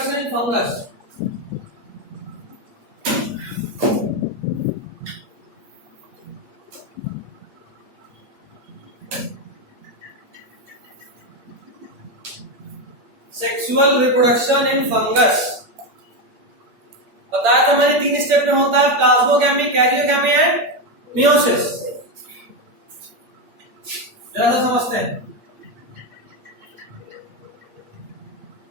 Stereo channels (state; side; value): late; left; 8.5 ms